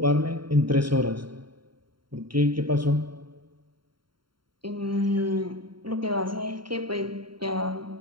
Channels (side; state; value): left; late; 0.73 ms